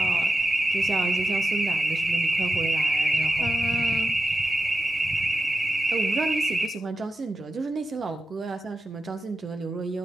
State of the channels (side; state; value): both; normal; correlation 0.89